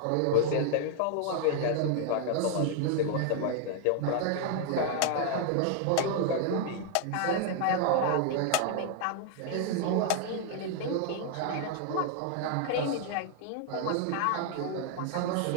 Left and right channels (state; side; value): different; both; correlation 0.00